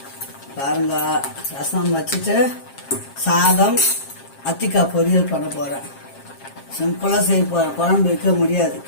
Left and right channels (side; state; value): right; late; 7.4 ms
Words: பாருங்க, ரசம் வச்சுட்டு சாதம் அத்திக்காய் பொரியல் பண்ண போகிறேன். சிம்பிளாக செய்ய போகிறேன். குழம்பு வைக்க முடியாது,